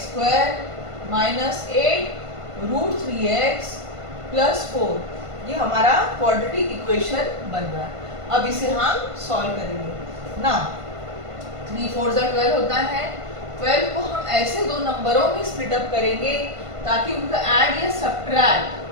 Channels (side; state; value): left; late; 1.5 ms